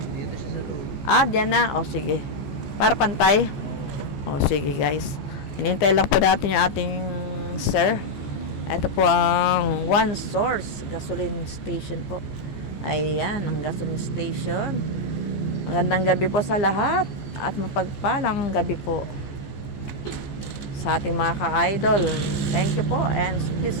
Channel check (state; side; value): late; right; 14 ms